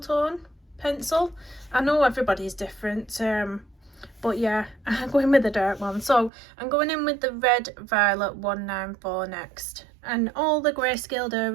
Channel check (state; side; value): drops out; left; at 6.3 s